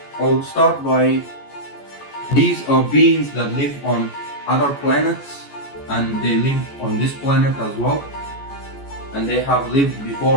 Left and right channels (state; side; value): late; right; 14 ms